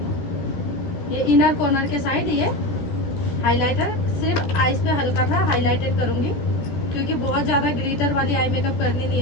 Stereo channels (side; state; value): right; late; 14 ms